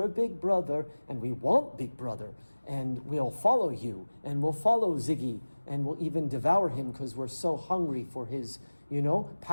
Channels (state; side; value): inverted; both; correlation -1.00